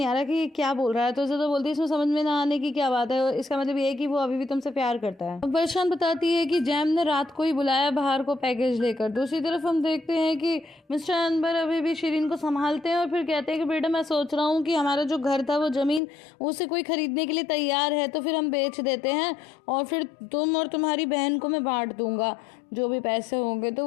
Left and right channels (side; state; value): right; drops out; at 16.0 s